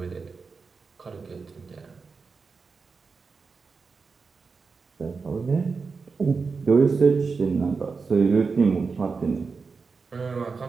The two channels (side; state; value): left; quieter; 4.8 dB